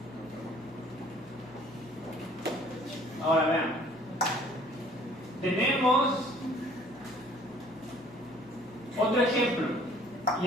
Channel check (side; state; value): both; normal; correlation 0.55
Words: Ahora vean. Tenemos otro ejemplo. Y